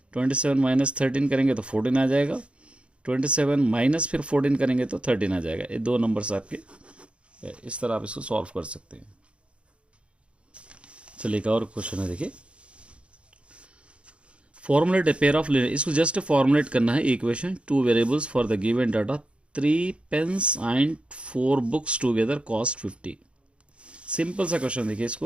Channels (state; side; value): late; left; 0.059 ms